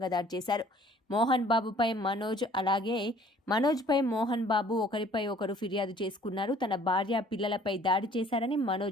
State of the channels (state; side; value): normal; both; correlation 0.55